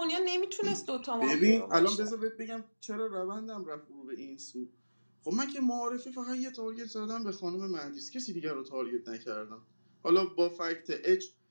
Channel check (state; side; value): inverted; both; correlation -1.00